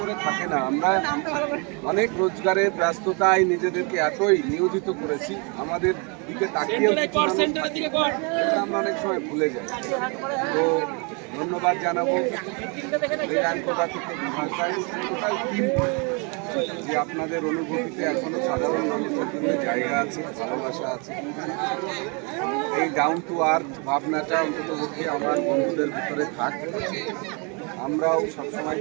থাকে না। আমরা অনেক রোজগারের ব্যস্ততায় নিজেদেরকে এতই নিয়োজিত করেছি, আমাদের দিকে তাকিয়েও আমরা অনেক সময় ভুলে যাই। তো ধন্যবাদ জানাবো রেজানকোটা থেকে বিভাগায় টোটাল টিম, যে আপনাদের অনুভূতিতে এখনো সাধারণ মানুষের জন্য জায়গা আছে, ভালোবাসা আছে। এই ডাউন টু আর্থ ভাবনাটা অন্ততপক্ষে আমার বন্ধুদের ভিতরে থাক। আমরাও সবসময়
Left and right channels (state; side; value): quieter; left; 33.8 dB